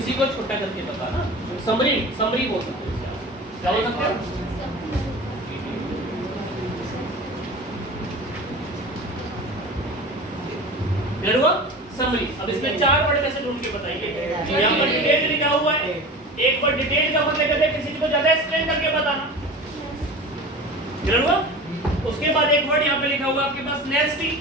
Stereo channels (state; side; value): normal; both; correlation 0.34